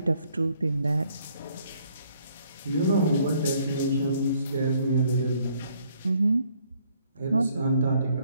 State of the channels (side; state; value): both; inverted; correlation -0.65